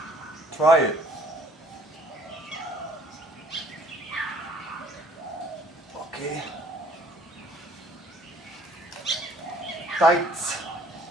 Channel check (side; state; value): both; normal; correlation 0.58